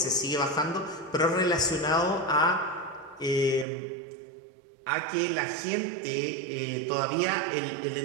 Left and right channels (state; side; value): drops out; left; at 3.7 s